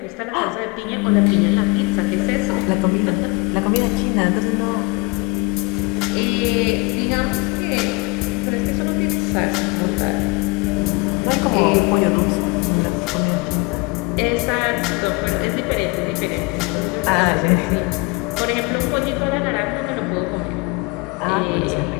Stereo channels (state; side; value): quieter; right; 27.5 dB